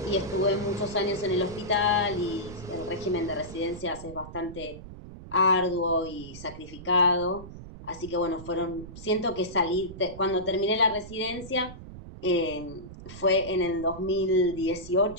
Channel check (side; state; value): right; noise; rumble, 14 dB below the sound